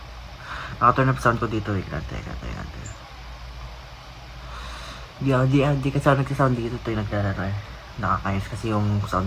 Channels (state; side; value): identical; both; correlation 1.00